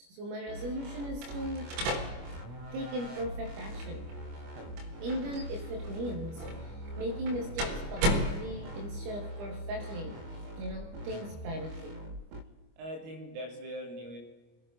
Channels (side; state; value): left; late; 25 ms